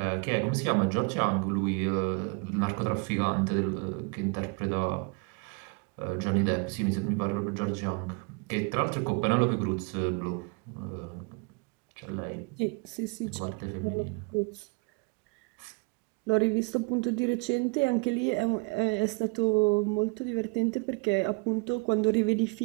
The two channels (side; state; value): left; quieter; 31.6 dB